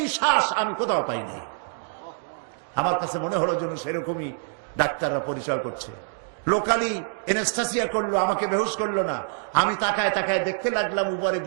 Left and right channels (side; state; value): left; silent; digital silence